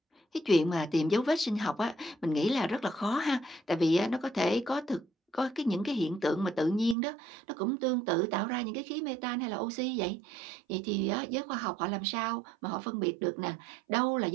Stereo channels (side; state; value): left; drops out; at 7.0 s